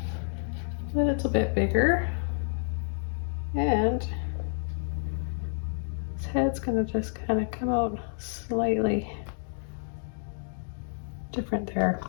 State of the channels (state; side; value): silent; right; digital silence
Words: little bit bigger. And his head's gonna just kind of come out slightly different there.